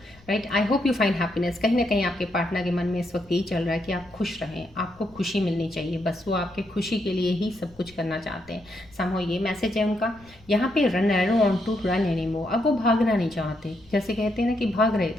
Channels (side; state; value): left; noise; rumble, 26 dB below the sound